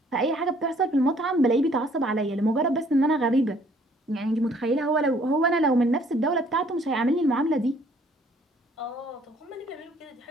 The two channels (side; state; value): both; normal; correlation 0.61